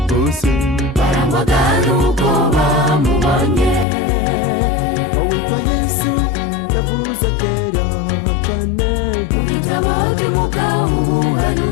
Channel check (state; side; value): drops out; right; at 3.9 s